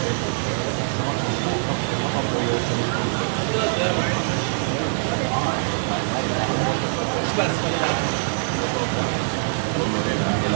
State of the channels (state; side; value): silent; left; digital silence